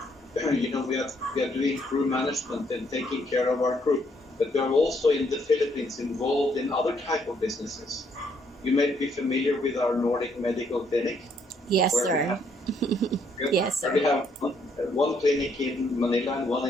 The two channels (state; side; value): normal; both; correlation 0.70